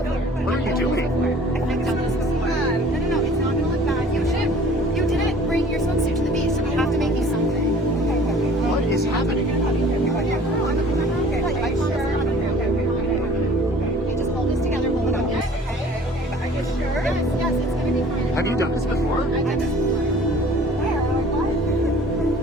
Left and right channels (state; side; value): normal; both; correlation 0.49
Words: What are you doing? I've done this before. No, it's not gonna look bad. You didn't bring your swimsuit to the beach, so we have to make you something. What is happening? Okay, just hold this together, hold it up. Are you sure? Yes, it's gonna be fine. Have you done this before? I've done this before.